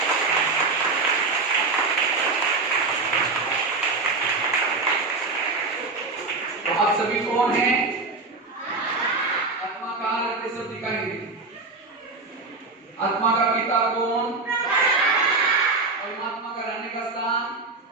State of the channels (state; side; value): quieter; left; 3.7 dB